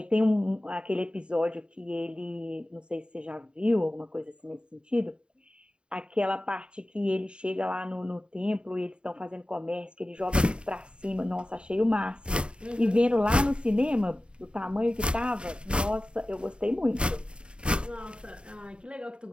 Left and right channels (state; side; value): late; left; 0.053 ms